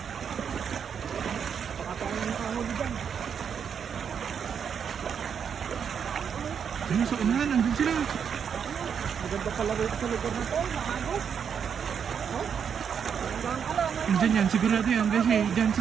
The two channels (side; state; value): left; quieter; 7.4 dB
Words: Baka tayo ng kahuli dyan. Ayun, sa unahan, andun sila. Maganda pala rito sa lugar na to. Nakagos. Oh? Hanggang ka lang. Andyan yan, sigurado yan. Kasi dyan,